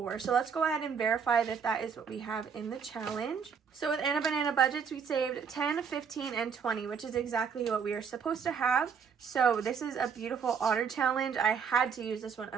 So let's go ahead and verify that that is what we have in the challenge. So with Anna Banana Budgets, we saved 10, 15, and 20, which is exactly what we are supposed to have. So this is a beautiful otter challenge. I had to use this one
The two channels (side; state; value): left; quieter; 6.5 dB